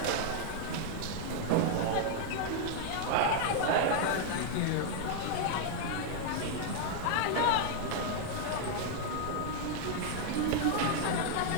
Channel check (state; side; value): different; both; correlation -0.01